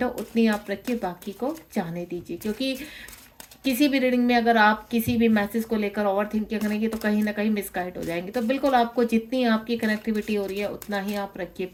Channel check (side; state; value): both; identical; correlation 1.00